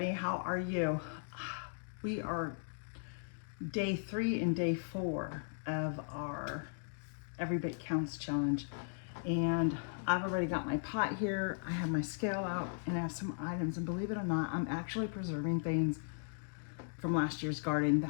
How are you? We are day 3 and day 4 of our Every Bit Counts challenge. And I've already got my pot here. I have my scale out and I have some items. And believe it or not, I'm actually preserving things from last year's garden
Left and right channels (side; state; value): right; silent; digital silence